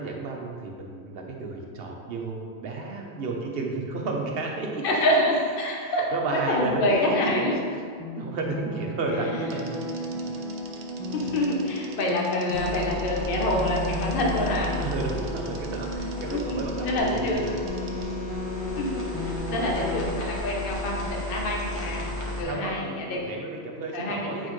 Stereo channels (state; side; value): normal; both; correlation 0.03